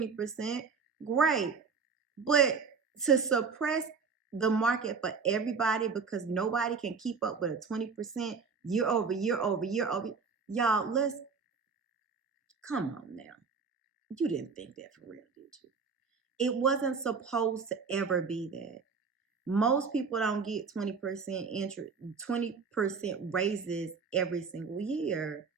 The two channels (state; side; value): quieter; left; 5.3 dB